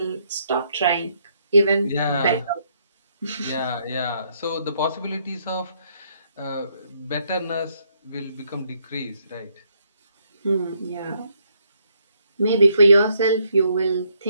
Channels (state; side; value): inverted; both; correlation -0.72